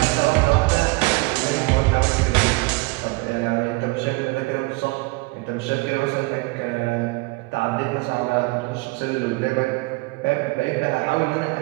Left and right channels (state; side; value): quieter; left; 25.8 dB